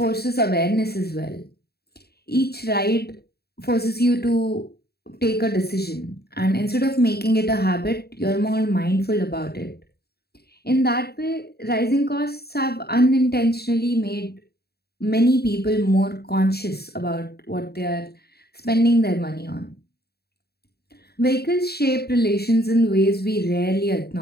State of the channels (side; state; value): right; late; 0.46 ms